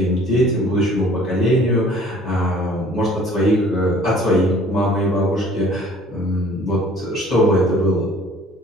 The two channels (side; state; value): both; normal; correlation 0.53